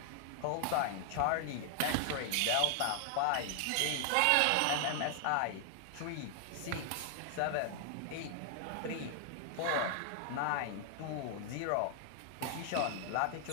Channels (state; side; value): different; both; correlation 0.00